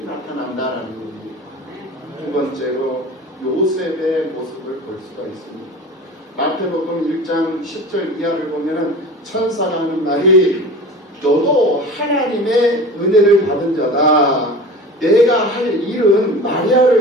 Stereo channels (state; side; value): normal; both; correlation 0.36